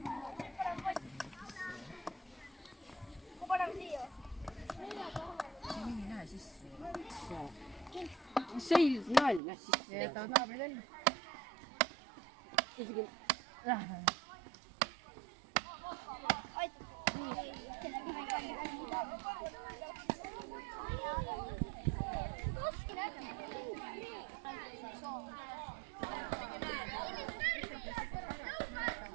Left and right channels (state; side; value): drops out; left; at 9.4 s